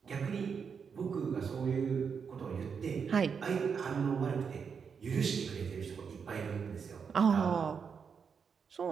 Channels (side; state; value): left; quieter; 6.3 dB